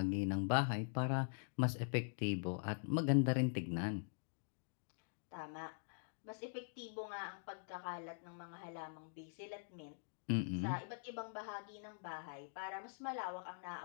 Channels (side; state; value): right; silent; digital silence